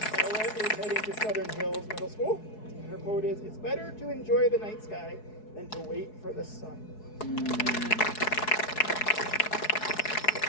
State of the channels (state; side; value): late; right; 4.7 ms